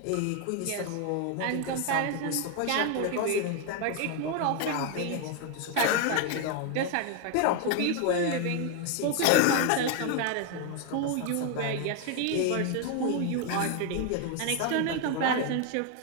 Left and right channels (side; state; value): both; different; correlation 0.01